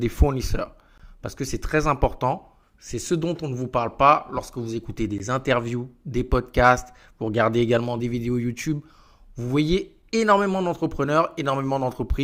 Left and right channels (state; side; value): identical; both; correlation 1.00